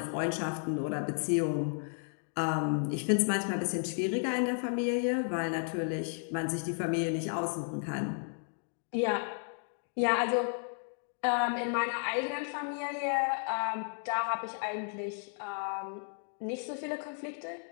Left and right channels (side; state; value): right; silent; 55 dB below the other